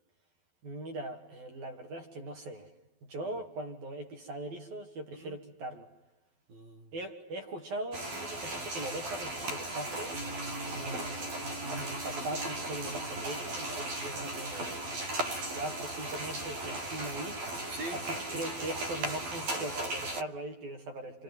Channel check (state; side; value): late; left; 12 ms